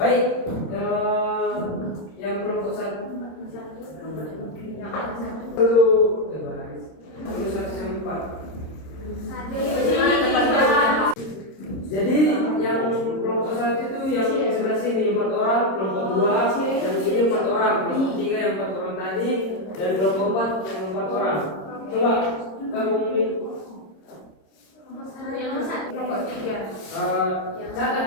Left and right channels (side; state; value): right; late; 26 ms